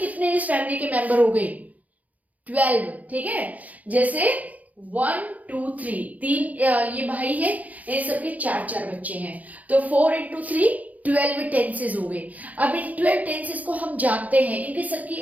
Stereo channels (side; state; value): left; late; 0.076 ms